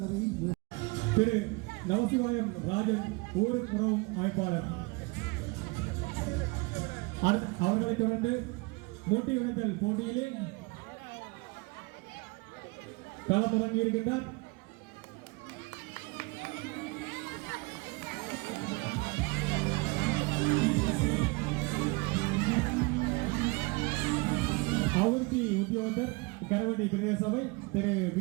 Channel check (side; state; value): left; quieter; 27.0 dB